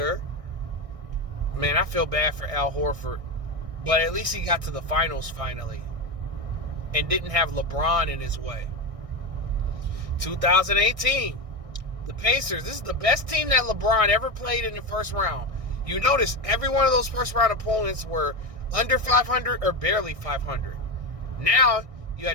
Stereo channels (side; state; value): left; late; 1.6 ms